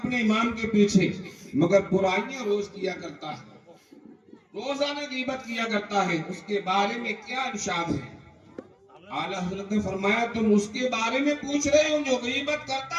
امام کے پیچھے، مگر برائیاں روز کیا کرتا ہے، روزانہ غیبت کیا کرتا ہے، اس کے بارے میں کیا ارشاد ہے؟ اعلیٰ حضرت نے فرمایا تم اس کے بارے میں پوچھ رہے ہو جو غیبت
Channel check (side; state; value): both; identical; correlation 1.00